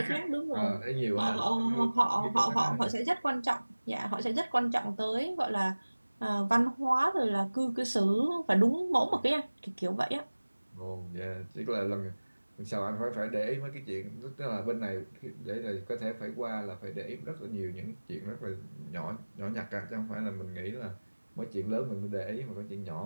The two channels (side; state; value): both; inverted; correlation -1.00